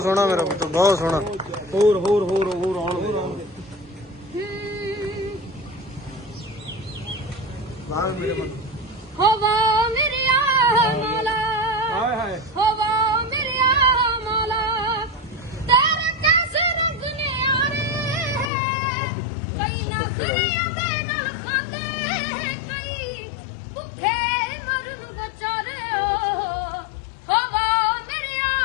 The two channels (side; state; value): right; drops out; at 18.5 s